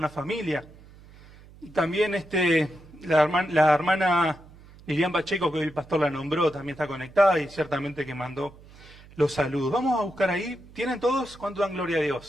familia. Y también la hermana Lilian Pacheco, que hoy el pastor la nombró, también está conectada y ciertamente que mandó los saludos. Vamos a buscar ahí. ¿Tienen todos? ¿Cuánto dan gloria a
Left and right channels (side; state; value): right; noise; hum, 22 dB below the sound